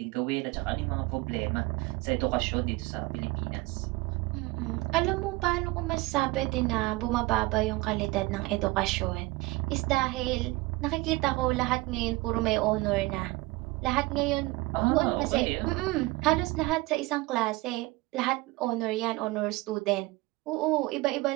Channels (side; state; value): left; quieter; 21.7 dB